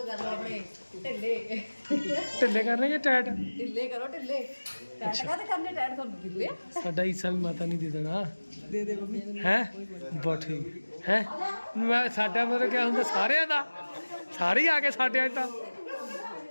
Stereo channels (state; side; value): inverted; both; correlation -1.00